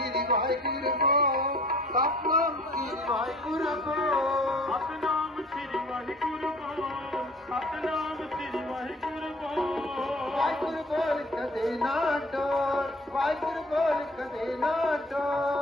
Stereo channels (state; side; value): normal; both; correlation 0.51